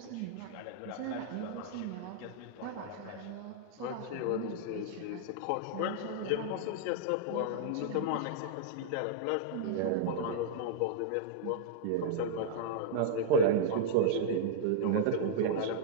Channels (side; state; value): both; different; correlation -0.02